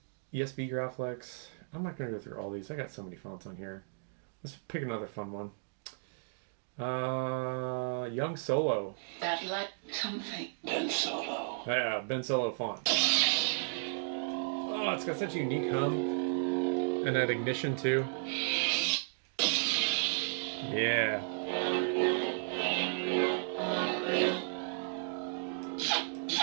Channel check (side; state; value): left; silent; digital silence